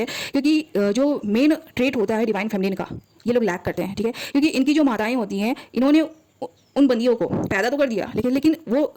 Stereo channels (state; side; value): identical; both; correlation 1.00